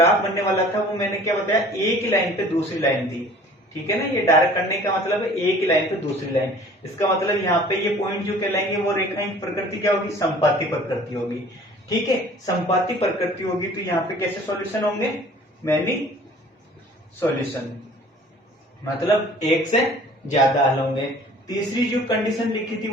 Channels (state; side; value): normal; both; correlation 0.49